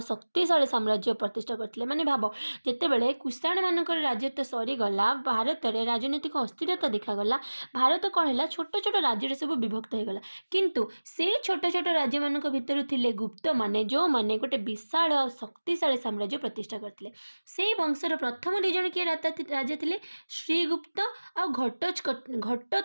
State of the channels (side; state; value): both; inverted; correlation -1.00